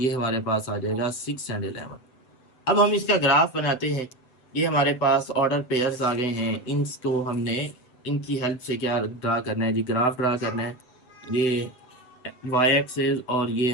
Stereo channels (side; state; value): right; late; 7.7 ms